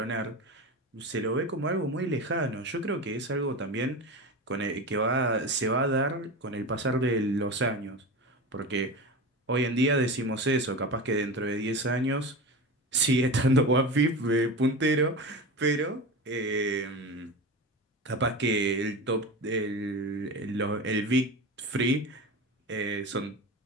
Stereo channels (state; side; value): normal; both; correlation 0.27